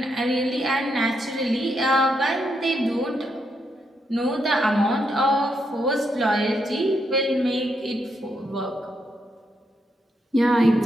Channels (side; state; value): both; normal; correlation 0.80